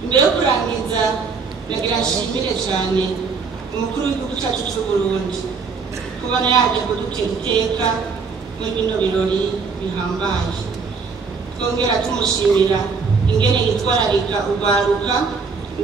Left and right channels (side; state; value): left; quieter; 5.0 dB